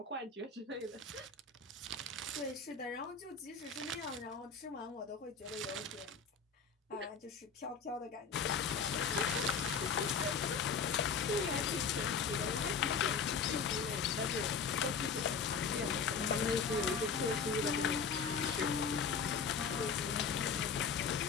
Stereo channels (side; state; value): right; quieter; 5.7 dB